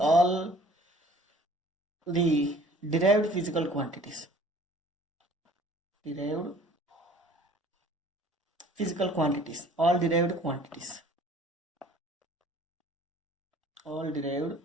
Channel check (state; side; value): normal; both; correlation 0.52